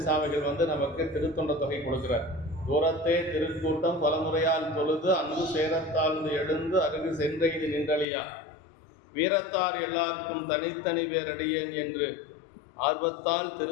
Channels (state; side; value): drops out; right; at 8.1 s